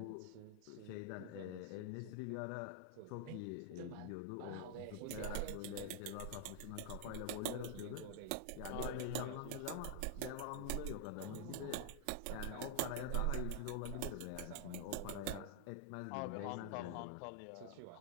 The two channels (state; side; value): different; both; correlation 0.00